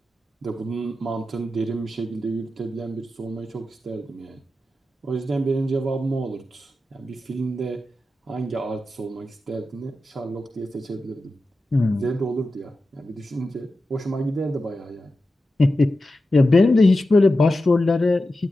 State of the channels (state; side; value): normal; both; correlation 0.92